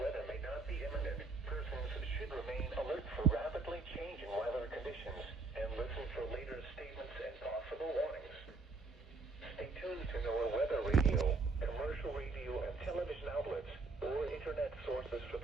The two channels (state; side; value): quieter; left; 3.8 dB